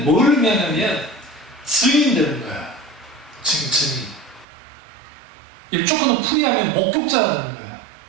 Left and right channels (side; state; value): left; drops out; at 4.5 s